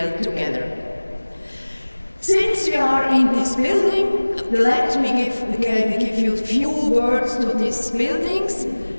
together. Since we are in this building, let me give you a few words to this building.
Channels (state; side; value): inverted; both; correlation -1.00